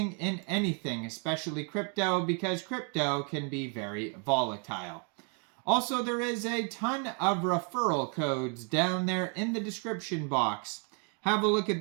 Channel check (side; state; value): left; quieter; 38.9 dB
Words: in anything, especially crypto, because crypto can be very volatile. Also, there is a ton of referral codes down there in the description box. Have a look at